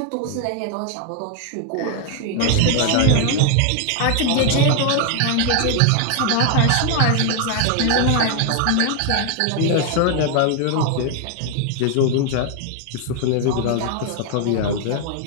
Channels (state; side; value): different; both; correlation 0.00